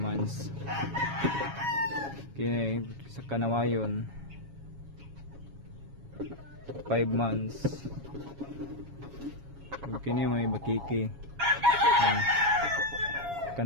Kini sa kanawayon 5 months. Kung kini may bakiki.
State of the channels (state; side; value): late; left; 7.2 ms